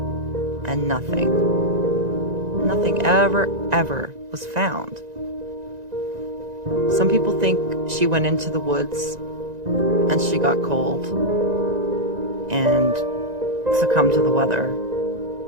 and nothing ever was found. Some people think she went into the woods and she got cold and succumbed to the weather.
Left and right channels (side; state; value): left; late; 1.9 ms